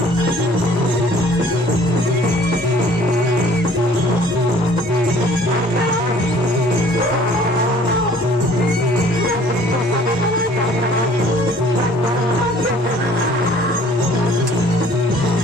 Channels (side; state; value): both; normal; correlation 0.54